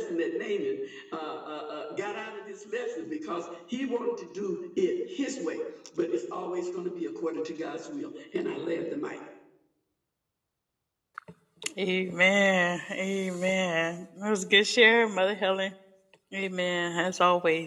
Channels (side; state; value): both; identical; correlation 1.00